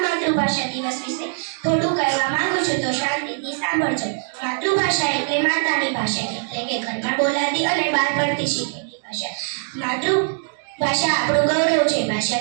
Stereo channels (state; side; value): silent; left; digital silence